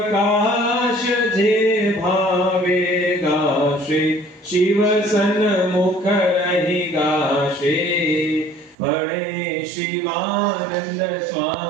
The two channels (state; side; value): drops out; left; at 8.8 s